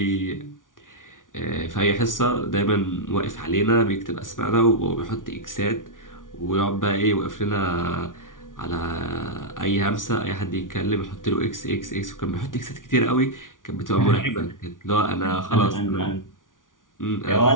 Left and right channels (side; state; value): right; late; 0.88 ms